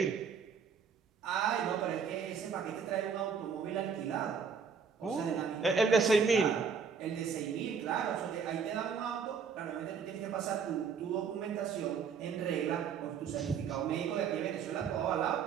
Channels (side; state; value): left; quieter; 6.2 dB